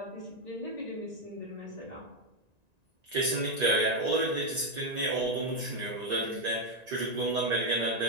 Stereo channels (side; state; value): left; late; 1.9 ms